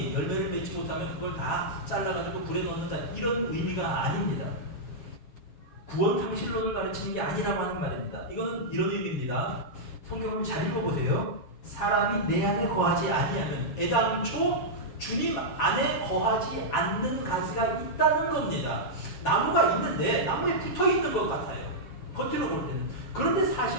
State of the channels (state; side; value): late; right; 7.3 ms